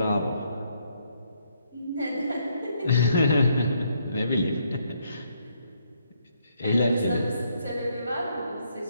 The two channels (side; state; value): both; inverted; correlation -0.73